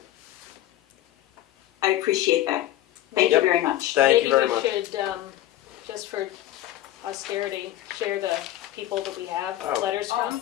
I appreciate that. Thank you very much. Thank you very much. Maybe we should, just for austerity, share the people that we have Oh. letters from.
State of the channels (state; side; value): quieter; right; 13.8 dB